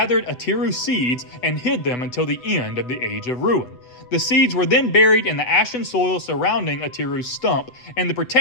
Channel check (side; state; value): right; late; 8.0 ms